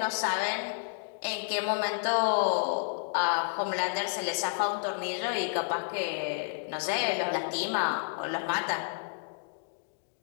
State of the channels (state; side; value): silent; right; digital silence